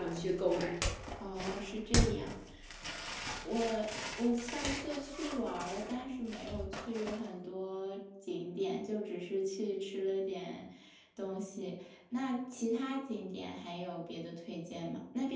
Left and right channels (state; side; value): identical; both; correlation 1.00